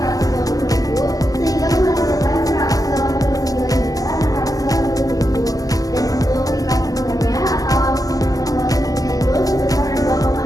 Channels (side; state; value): right; late; 0.17 ms